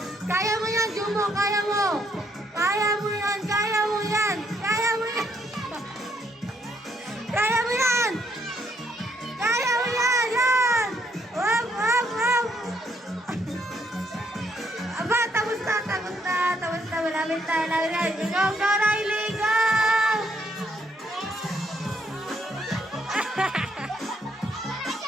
Kaya mo yan, Jumbo! Kaya mo! Kaya mo yan! Kaya mo yan! Kaya mo yan! Kaya mo yan! Kaya mo yan! Yan! Wap! Wap! Wap! Aba, tapos na! Tapos na! Tapos na! Malapit na! Malapit na! Go! Go, Riley! Go!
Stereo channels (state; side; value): normal; both; correlation 0.72